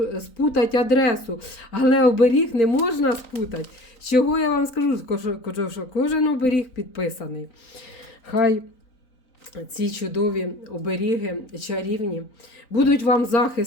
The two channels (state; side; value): late; right; 3.9 ms